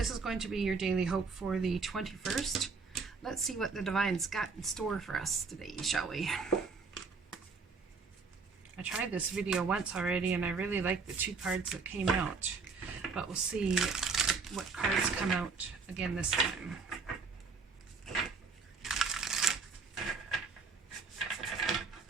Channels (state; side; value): quieter; left; 4.7 dB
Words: is going to be your daily hope for the 21st. Let's see what the Divine's got in store for us today, shall we? I tried this video once already and I really liked the two cards that came out. But we'll see what cards come out again this time.